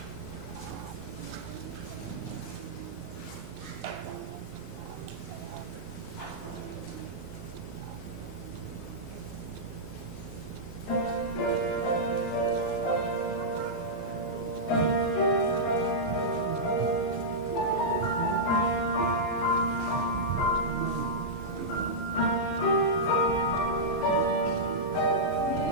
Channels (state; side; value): late; right; 5.3 ms